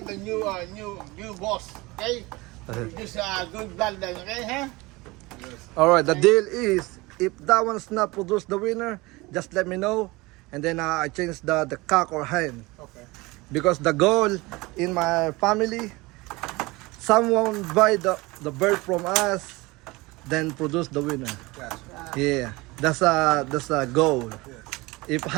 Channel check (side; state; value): left; quieter; 22.7 dB